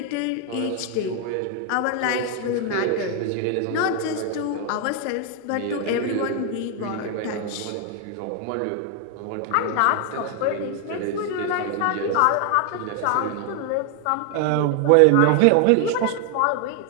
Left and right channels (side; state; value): both; different; correlation 0.00